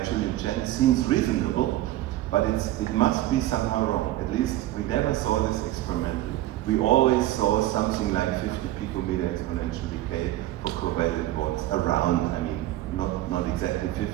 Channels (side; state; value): left; quieter; 15.3 dB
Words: Julian Chen seems reasonable, but it must be somehow wrong. At least we never saw this experimentally. We always saw something like 50 picometer exponential decay for covalent bonds around. I mean, not exactly 50,